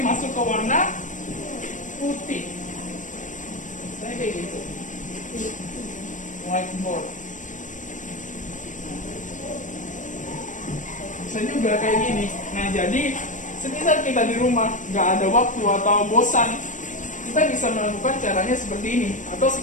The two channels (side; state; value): right; late; 0.37 ms